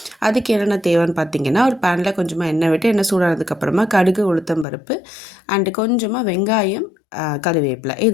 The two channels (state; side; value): drops out; right; at 4.7 s